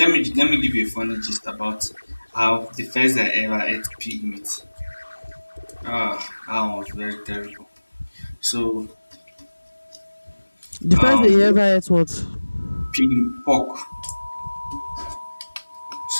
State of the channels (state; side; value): inverted; both; correlation -1.00